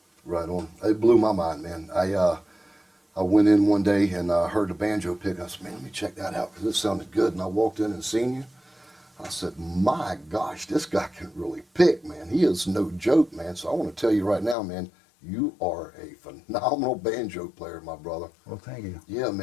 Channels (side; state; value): right; drops out; at 14.6 s